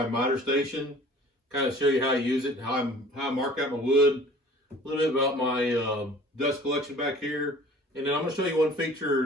miter station, kind of show you how I use it, how I mark out my wood, a little bit about my dust collection back here, and then I'm going to show you one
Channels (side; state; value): both; normal; correlation 0.48